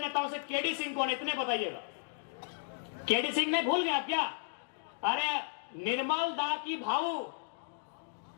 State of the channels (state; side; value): silent; right; digital silence